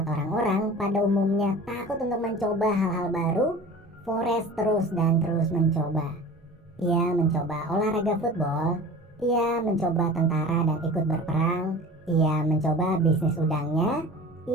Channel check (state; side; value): normal; both; correlation 0.39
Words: orang-orang pada umumnya takut untuk mencoba hal-hal baru, Forrest terus dan terus mencoba. Ia mencoba olahraga football, ia mencoba tentara dan ikut berperang, ia mencoba bisnis udangnya,